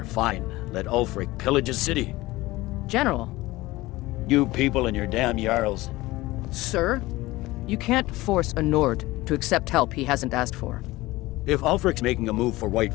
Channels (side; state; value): right; quieter; 19.2 dB